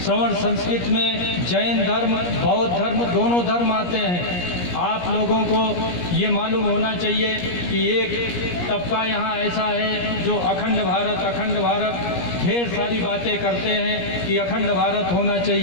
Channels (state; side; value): late; right; 17 ms